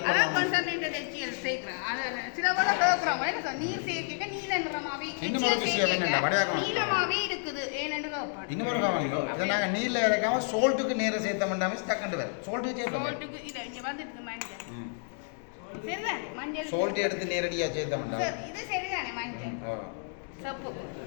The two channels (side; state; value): right; silent; 58 dB below the other